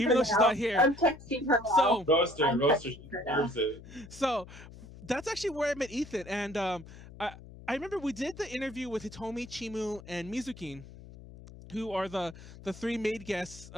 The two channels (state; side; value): noise; left; hum, 17 dB below the sound